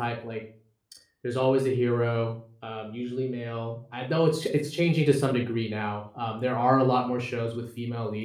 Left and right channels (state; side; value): identical; both; correlation 1.00